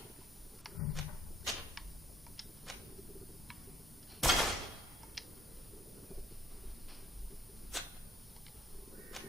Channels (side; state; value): both; normal; correlation 0.63